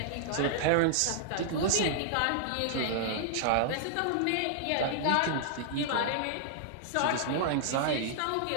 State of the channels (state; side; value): different; both; correlation -0.01